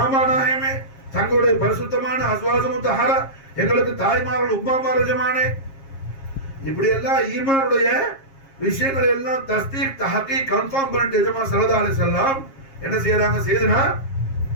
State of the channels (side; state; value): right; late; 7.4 ms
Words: ஆமா நாயகமே, தங்களுடைய பரிசுத்தமான அஸ்வாஜ் முத்தஹரா எங்களுக்கு தாய்மார்கள் உம்மாமார் எஜமானே. இப்படி எல்லாம் ஈமானுடைய விஷயங்களை எல்லாம் தஸ்தீக் தஹகீக் கன்ஃபார்ம் பண்ணிட்டு எஜமா ஸல்லல்லாஹு அலைஹி வஸல்லம் என்ன செய்யறாங்க, செய்தனா